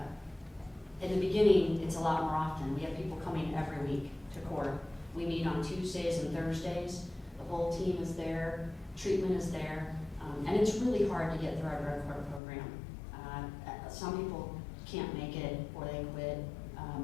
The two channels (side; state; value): right; drops out; at 12.4 s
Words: In the beginning, it's a lot more often. We have people coming every week to court. We meet on Tuesdays and Thursdays. The whole team is there. Treatment is there. And it's really hard to get through our drug court program. Some people can't make it or they quit.